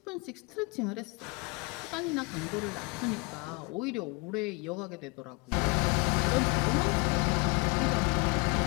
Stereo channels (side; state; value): right; quieter; 28.7 dB